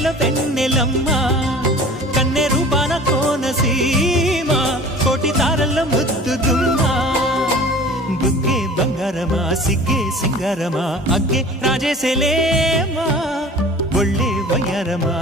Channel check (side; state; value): both; normal; correlation 0.43